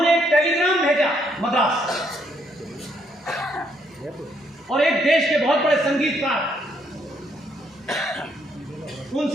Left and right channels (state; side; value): normal; both; correlation 0.72